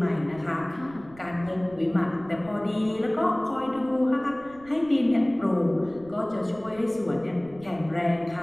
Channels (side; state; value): right; noise; rumble, 22 dB below the sound